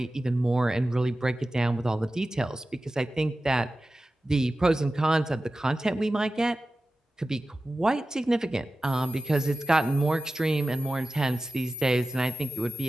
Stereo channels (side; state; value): both; normal; correlation 0.94